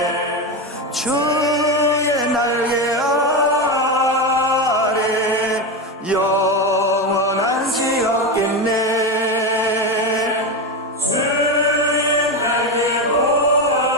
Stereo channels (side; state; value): both; normal; correlation 0.15